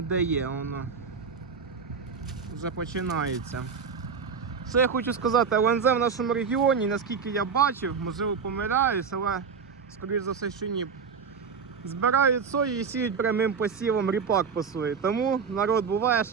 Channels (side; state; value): left; quieter; 5.9 dB